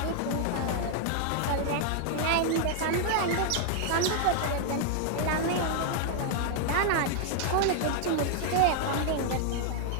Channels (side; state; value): both; different; correlation 0.00